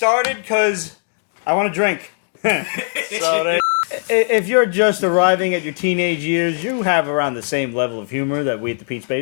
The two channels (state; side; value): silent; right; 65 dB below the other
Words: because I want to drink. If you're just arriving at your teenage years, you have around the same level of humor that we at the Peach